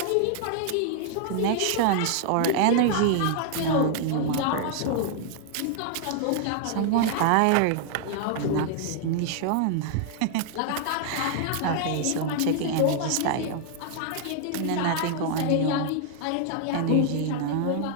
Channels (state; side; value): different; both; correlation 0.00